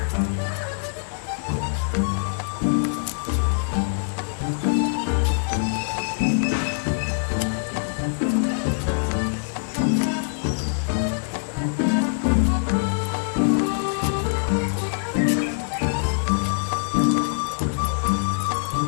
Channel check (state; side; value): silent; right; digital silence